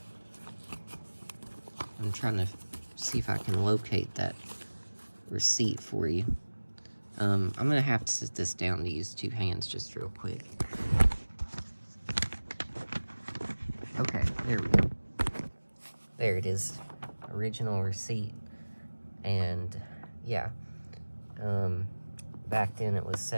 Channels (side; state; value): both; inverted; correlation -1.00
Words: I'm trying to see if I can locate that receipt for you. I'm gonna have to sit this down to use two hands just real quick. Okay, there we go. There it is. Original receipt. And yeah, back then it was